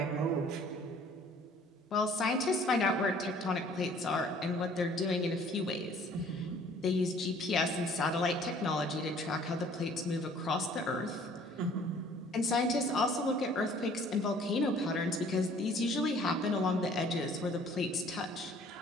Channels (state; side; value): normal; both; correlation 0.55